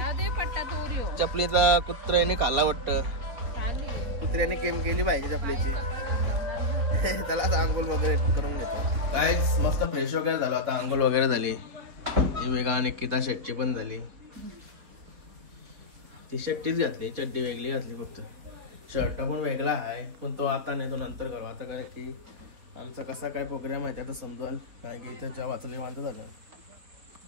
चपलीचा कुत्र्याने खाल्ला वाटतं कुत्र्याने केम केली पाहिजे चपलीची त्याला आता अंघोळ वगैरे करून घेतो काय मस्त फ्रेश वगैरे झालं आता अंघोळ वगैरे झाली ही वेगळा निकिता शेटची पण झाली ती शर्टीच घातली चड्डी वेगळी घातली फक्त शर्ट पण वेगळा आहे पण तो आता नाही तो नंतर करू आता कारण की आमचा कसा काय प्रोग्राम आहे आता समजाल काय की इथं जेव्हा वाचली मानतो झालं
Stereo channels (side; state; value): left; late; 4.2 ms